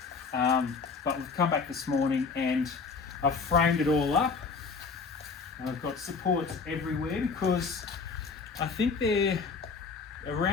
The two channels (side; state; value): right; quieter; 4.9 dB